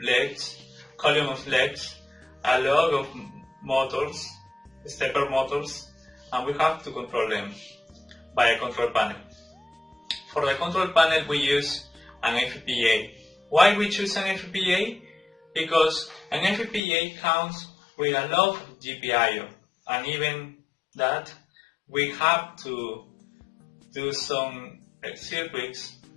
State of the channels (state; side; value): drops out; right; at 16.8 s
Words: legs, column of legs, a lot of motors, stepper motors, and we have to control them by a control panel. For the control panel we use an FPGA. Why we choose an FPGA? Because an FPGA comes with a lot of GPIO, and even that we have to do some circuits